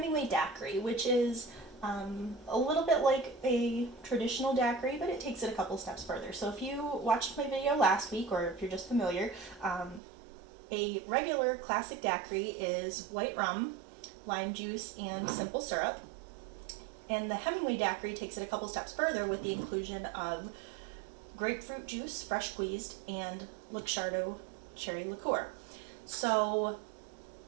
Daiquiri, which is a little bit like a traditional daiquiri, but it takes it a couple steps further. So if you watched my video last week, or if you're just familiar, a regular classic daiquiri is white rum, lime juice, and simple syrup. And the Hemingway daiquiri takes it a couple steps further with the inclusion of grapefruit juice, fresh squeezed, and Luxardo cherry liqueur. So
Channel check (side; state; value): left; drops out; at 10.0 s